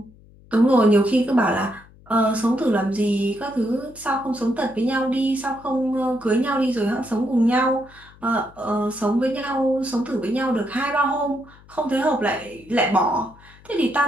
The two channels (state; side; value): noise; left; hum, 25 dB below the sound